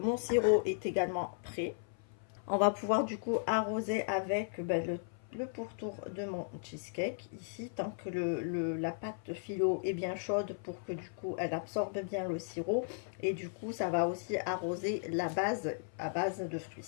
sirop est également prêt. On va pouvoir du coup arroser avec le pourtour de mon cheesecake ici, tant que la pâte phyllo est bien chaude pour que du coup elle absorbe bien le sirop, et du coup ça va aussi arroser la base à base de fruits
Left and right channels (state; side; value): silent; right; 54 dB below the other